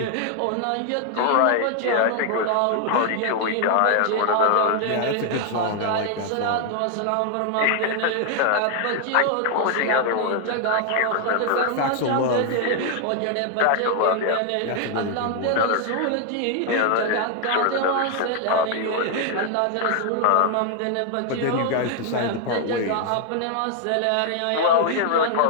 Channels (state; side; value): different; both; correlation 0.00